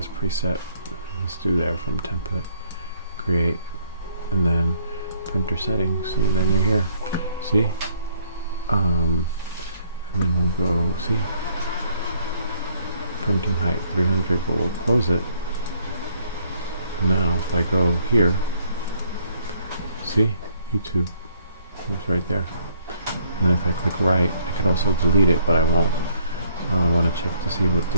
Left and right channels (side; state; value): both; inverted; correlation -0.67